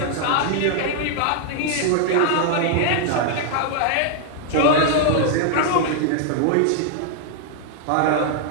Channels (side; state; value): both; different; correlation 0.00